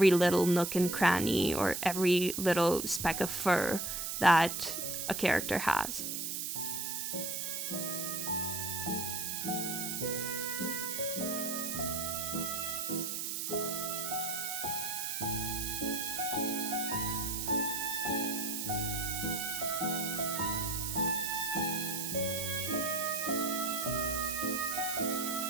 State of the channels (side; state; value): right; noise; hiss, 3 dB below the sound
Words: little nook and cranny or every little speck of fur that a character has.